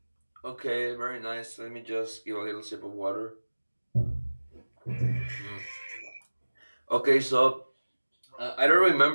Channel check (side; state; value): both; inverted; correlation -1.00